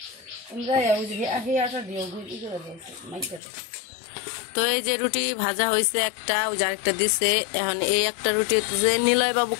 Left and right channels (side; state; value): right; drops out; at 3.4 s